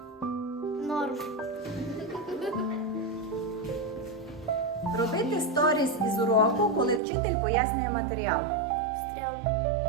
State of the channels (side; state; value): left; drops out; at 7.0 s